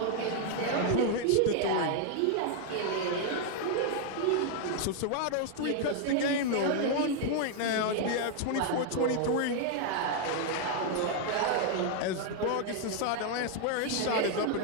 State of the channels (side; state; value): both; different; correlation 0.00